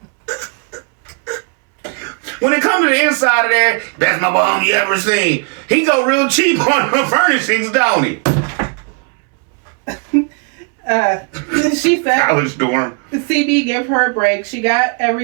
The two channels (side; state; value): left; quieter; 35.7 dB